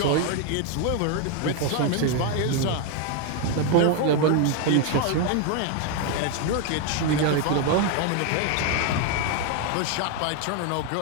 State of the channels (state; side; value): different; both; correlation 0.01